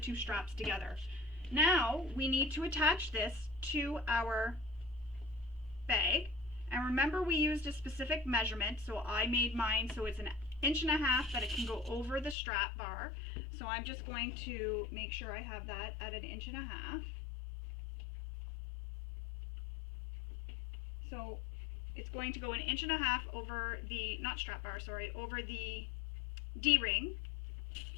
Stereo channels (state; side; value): drops out; right; at 12.4 s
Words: straps together. Now we need to attach this to our bag. And remember, we used a specific measurement, so I made mine so it's 1.5 inches that it can go over the strap bar. So I'm just going to make sure I have that at 1.5 inches. So it's going to go 1.5 inches over the, not strap bar, sorry, over the D-ring.